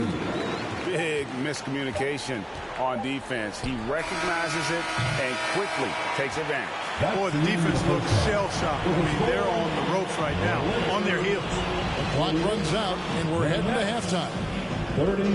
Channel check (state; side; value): identical; both; correlation 1.00